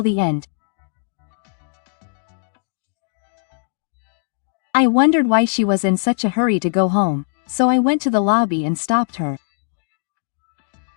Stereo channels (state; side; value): silent; right; digital silence